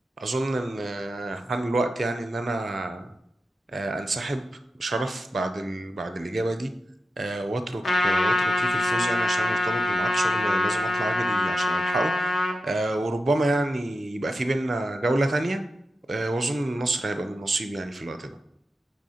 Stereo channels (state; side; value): normal; both; correlation 0.89